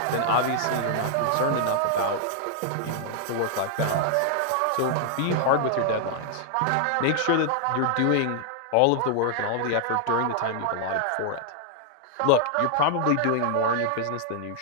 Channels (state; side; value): different; both; correlation 0.00